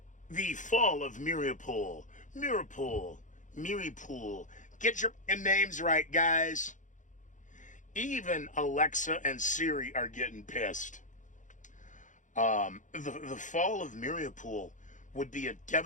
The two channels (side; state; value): right; late; 0.36 ms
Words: The fall of Mariupol. Mariupol. Get your names right, guys. Even Alexa and Siri are getting pissed. The fall of Mariupol would be a